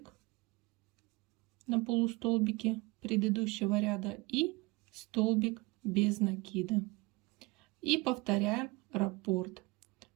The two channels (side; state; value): left; quieter; 24.0 dB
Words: на полустолбике предыдущего ряда и столбик без накида. И повторяем раппорт.